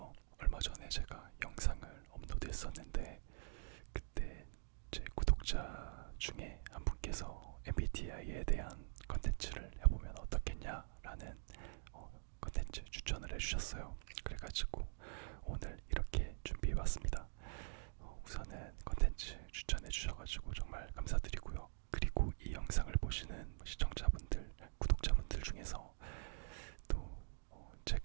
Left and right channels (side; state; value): left; silent; digital silence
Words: 얼마 전에 제가 영상을 업로드했었는데 그때 제 구독자 중에 한 분께서 MBTI에 대한 컨텐츠를 해보면 어떻겠냐라는 컨텐츠 추천을 해주셨어요. 그래가지고 오늘 이렇게 준비해봤습니다. 우선은 컨텐츠 추천해주셔가지고 정말 감사드리고요. 그리고 이 영상을 보시는 시청자분들, 구독자분들 중에서 또